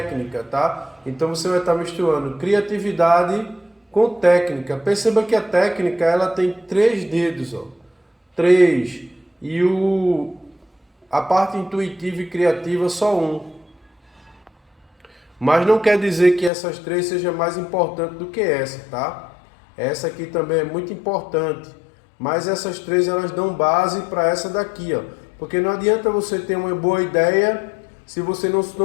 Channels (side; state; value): right; drops out; at 16.5 s